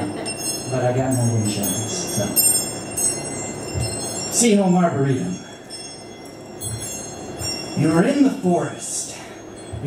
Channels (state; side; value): identical; both; correlation 1.00